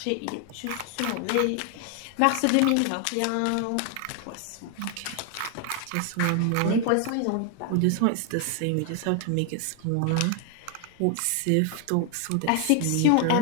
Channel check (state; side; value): different; both; correlation 0.00